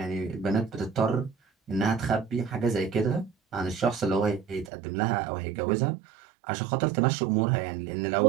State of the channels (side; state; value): left; drops out; at 4.7 s